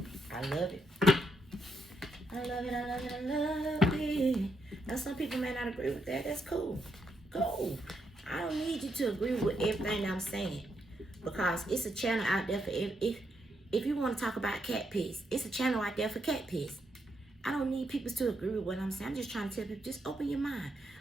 I love it. I love it, I love it, I love it. Now some people may not agree with that. That's cool. Cool. I don't need you to agree with everything I'm saying. Because it's a channel out there for if you want to talk about cat piss, it's a channel out there for cat piss. I don't need people to agree with what I'm saying. I'm just trying to tell people, just open your mind.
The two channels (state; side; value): normal; both; correlation 0.79